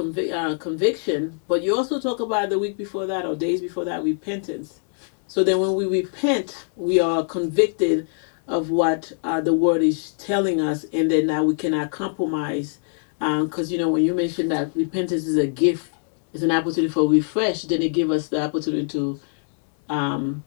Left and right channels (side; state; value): right; silent; digital silence